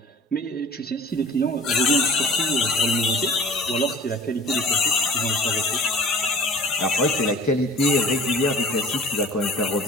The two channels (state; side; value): normal; both; correlation 0.45